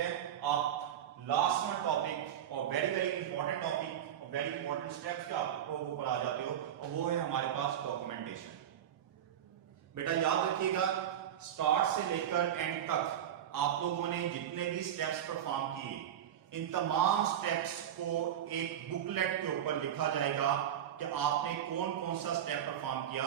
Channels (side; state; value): left; quieter; 10.2 dB